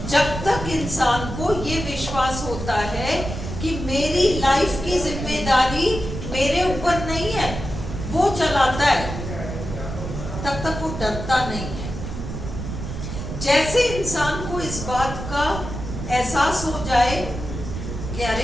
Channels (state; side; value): noise; right; rumble, 7 dB below the sound